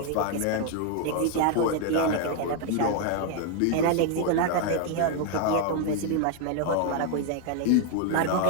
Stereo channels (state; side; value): different; both; correlation 0.00